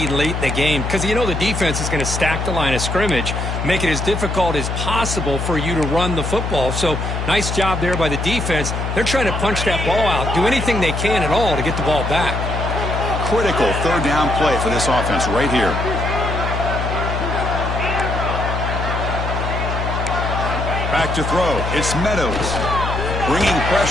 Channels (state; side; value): noise; left; hum, 3 dB below the sound